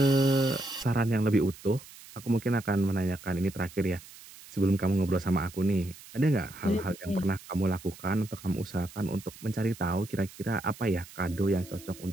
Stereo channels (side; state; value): right; noise; hiss, 19 dB below the sound